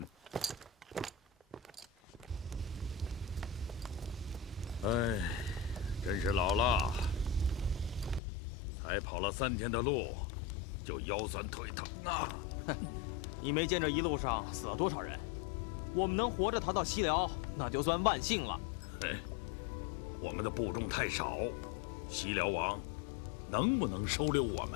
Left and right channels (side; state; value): right; drops out; at 8.2 s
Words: 哎，真是老了，才跑了3天的路，就腰酸腿疼啊！哼，你没见这一路上死了多少人？我们能活着逃到西辽，那就算万幸了。哎，我们的部众太少，西辽王能不能收留我